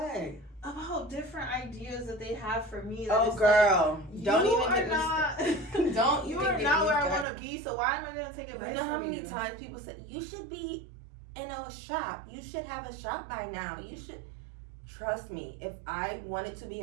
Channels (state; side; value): drops out; left; at 7.2 s